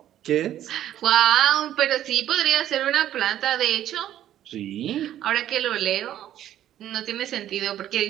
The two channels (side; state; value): left; quieter; 11.9 dB